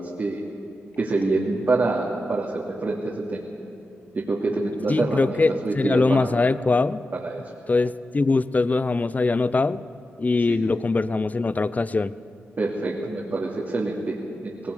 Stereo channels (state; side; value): normal; both; correlation 0.90